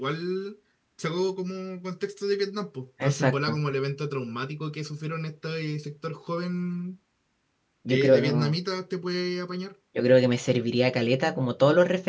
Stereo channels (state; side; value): identical; both; correlation 1.00